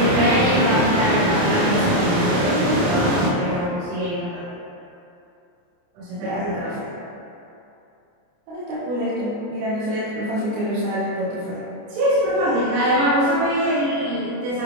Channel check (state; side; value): late; left; 29 ms